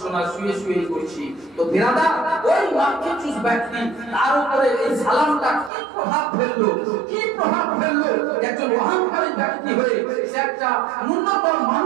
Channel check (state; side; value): drops out; left; at 5.7 s